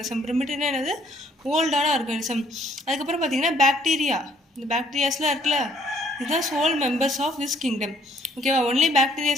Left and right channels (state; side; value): normal; both; correlation 0.64